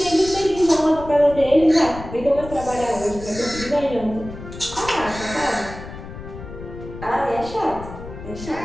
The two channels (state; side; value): noise; left; rumble, 12 dB below the sound